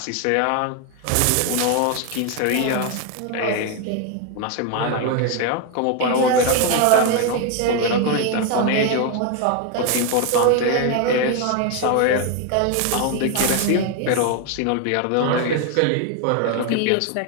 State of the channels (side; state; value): both; different; correlation 0.01